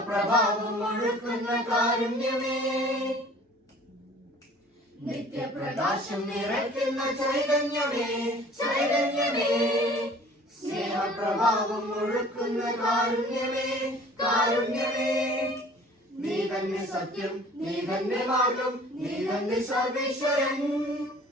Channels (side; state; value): both; normal; correlation 0.49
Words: ഒഴുക്കുന്ന കാരുണ്യമേ, നിത്യപ്രകാശം നിറയ്ക്കുന്ന ചൈതന്യമേ, ചൈതന്യമേ, സ്നേഹപ്രഭാവം ഒഴുക്കുന്ന കാരുണ്യമേ, കാരുണ്യമേ, നീ തന്നെ സത്യം, നീ തന്നെ മാർഗം, നീ തന്നെ സർവേശ്വരൻ.